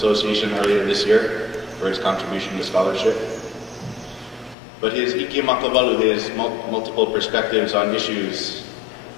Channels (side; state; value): right; drops out; at 4.5 s